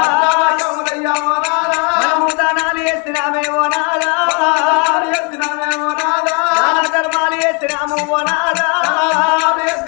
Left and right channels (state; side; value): quieter; right; 35.9 dB